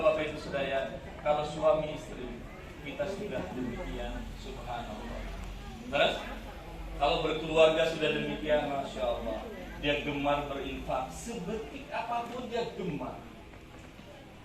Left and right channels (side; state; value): both; identical; correlation 1.00